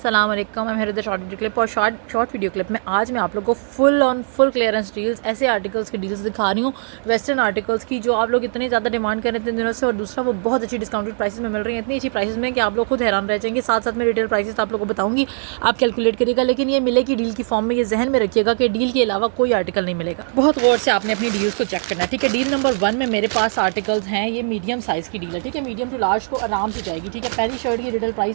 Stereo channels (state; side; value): silent; left; 66 dB below the other